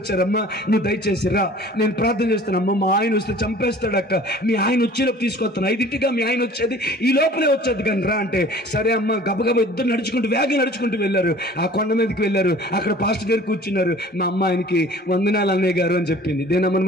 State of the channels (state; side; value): normal; both; correlation 0.47